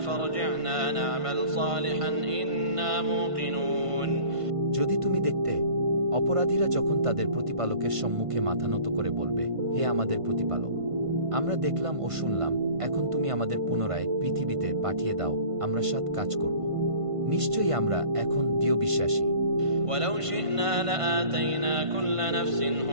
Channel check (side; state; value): left; late; 1.5 ms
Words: فارجعنا نعمل صالحا إنا موقنون। যদি তুমি দেখতে, অপরাধীরা যখন তাদের প্রতিপালকের সম্মুখে মাথা নত করে বলবে, হে আমাদের প্রতিপালক, আমরা দেখলাম ও শুনলাম, এখন তুমি আমাদের পুনরায় পৃথিবীতে পাঠিয়ে দাও, আমরা সৎ কাজ করব। নিশ্চয়ই আমরা এখন দৃঢ় বিশ্বাসী। ولو شئنا لآتينا كل نفس